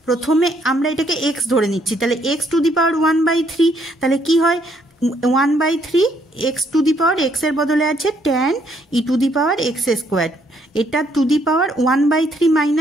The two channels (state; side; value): normal; both; correlation 0.70